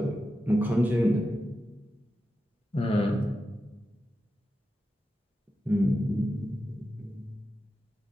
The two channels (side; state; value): both; normal; correlation 0.90